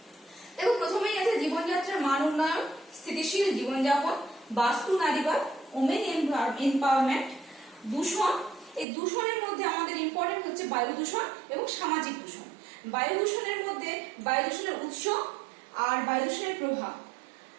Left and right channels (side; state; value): left; drops out; at 8.8 s